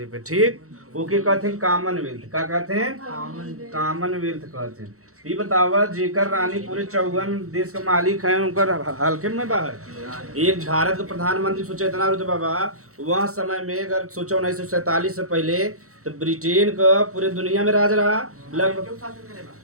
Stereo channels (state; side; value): late; left; 0.64 ms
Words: पे, ठीक। ओके कहते हैं कॉमनवेल्थ। का कहते हैं? कॉमनवेल्थ कहते हैं। ये बतावा जेकर रानी पूरे 54 देश का मालिक है, उनकर हल्के में बाहर एक भारत का प्रधानमंत्री सोचा इतना रुतबा बा। वह समय में अगर सोचा 1947 से पहले तो ब्रिटेन का पूरे दुनिया में राज रहा लगभग।